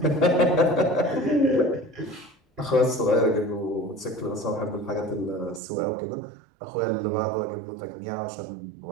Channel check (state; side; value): drops out; left; at 5.6 s